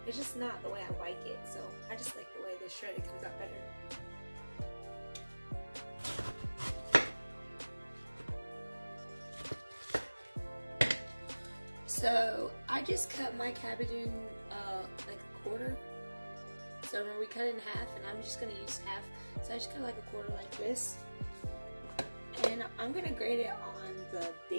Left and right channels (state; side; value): inverted; both; correlation -1.00